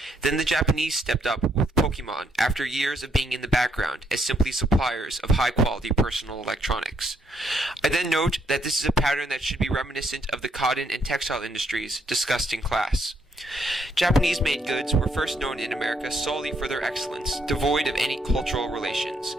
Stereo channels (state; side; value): normal; both; correlation 0.73